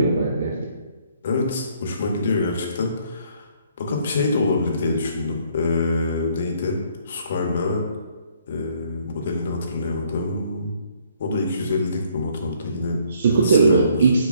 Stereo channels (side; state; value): both; inverted; correlation -0.65